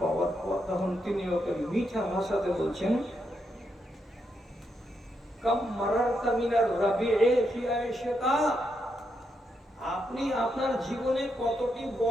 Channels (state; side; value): normal; both; correlation 0.81